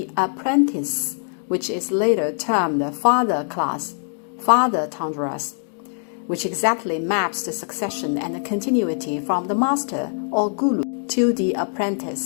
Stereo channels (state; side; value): silent; right; 64 dB below the other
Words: apprentice, which is later termed father class, father tundras, which exactly maps the succession and continuity from the master or guru to the